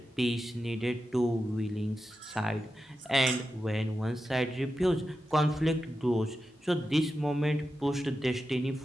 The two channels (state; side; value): normal; both; correlation 0.91